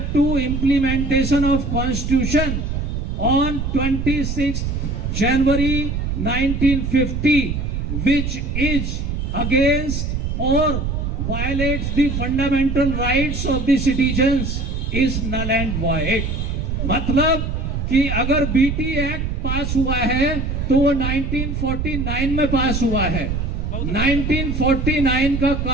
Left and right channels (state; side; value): noise; right; rumble, 2 dB below the sound